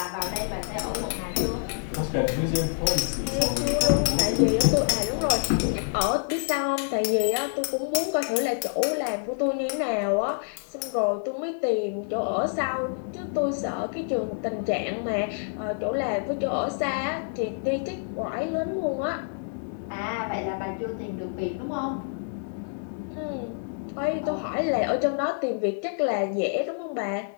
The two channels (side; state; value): right; silent; digital silence